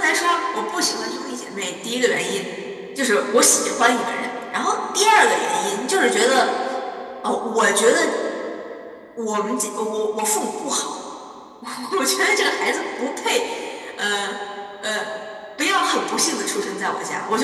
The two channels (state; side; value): identical; both; correlation 1.00